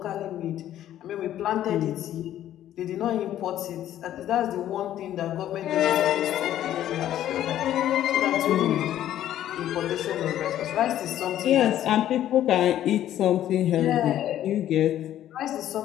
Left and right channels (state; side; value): quieter; right; 12.0 dB